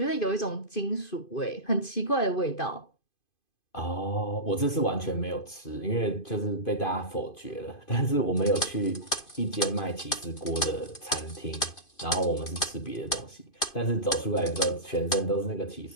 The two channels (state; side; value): late; right; 2.5 ms